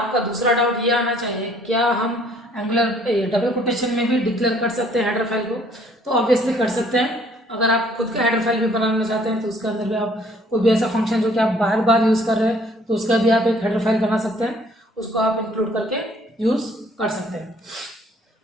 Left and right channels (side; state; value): both; normal; correlation 0.60